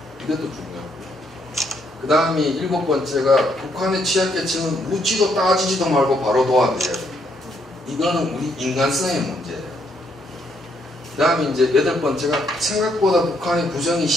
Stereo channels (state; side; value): normal; both; correlation 0.72